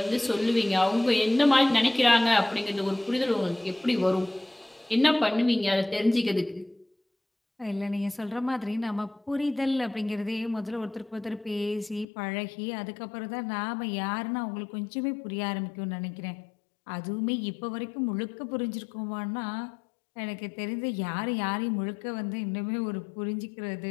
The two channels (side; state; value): right; drops out; at 12.1 s